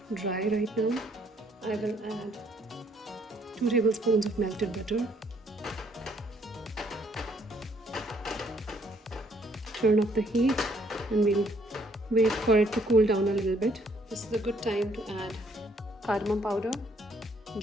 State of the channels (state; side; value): normal; both; correlation 0.66